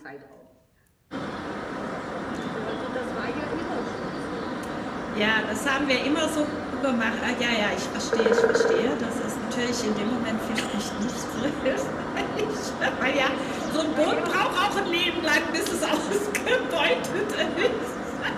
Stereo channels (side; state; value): both; identical; correlation 1.00